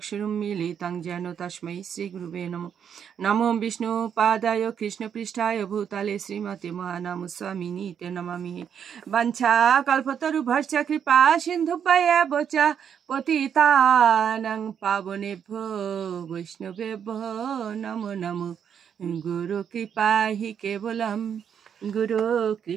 যেন তস্मै শ্রীগুরুবে নমঃ। নমো বিষ্ণুপাদায় কৃষ্ণপৃষ্ঠায় ভূতলে শ্রীমতে মহানামস্বামিনীতে নমামি। বাঞ্ছাকল্পতরুভ্যশ্চ কৃপা সিন্ধুভ্যেব চ পতিতানাং পাবনেভ্যো বৈষ্ণবেভ্যো নমো নমো। গুরু কৃপা হি কেবলম, গুরু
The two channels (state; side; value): quieter; left; 8.0 dB